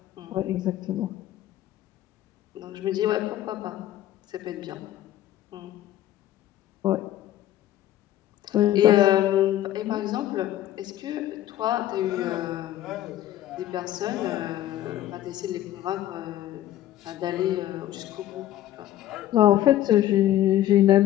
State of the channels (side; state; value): right; quieter; 13.2 dB